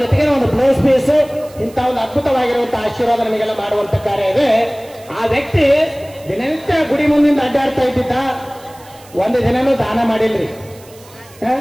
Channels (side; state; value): right; noise; hiss, 24 dB below the sound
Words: ಜೊತೆಗೆ ಒಂದು ಬ್ಲೌಸ್ ಪೀಸ್, ಇಂಥ ಒಂದು ಅದ್ಭುತವಾಗಿರುವಂತಹ ಆಶೀರ್ವಾದ ನಮಗೆಲ್ಲ ಮಾಡುವಂತ ಕಾರ್ಯ ಇದೆ. ಆ ವ್ಯಕ್ತಿ ದಿನನಿತ್ಯ ಗುಡಿ ಮುಂದಿಂದ ಅಡ್ಡಾಡ್ತಾ ಇದ್ದಿದ್ದ. ಒಂದು ದಿನನೂ ದಾನ ಮಾಡಿಲ್ರಿ,